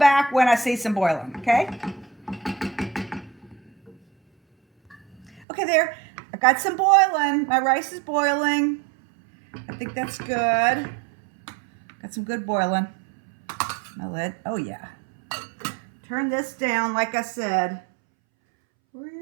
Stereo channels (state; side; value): drops out; left; at 5.5 s